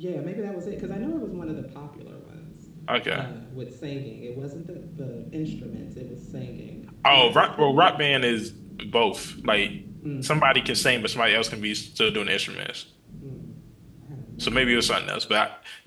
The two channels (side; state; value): both; identical; correlation 1.00